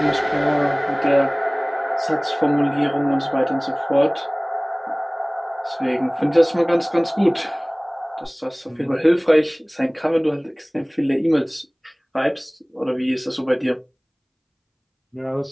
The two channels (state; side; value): identical; both; correlation 1.00